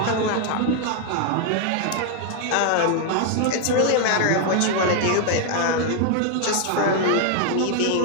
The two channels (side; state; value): both; different; correlation 0.00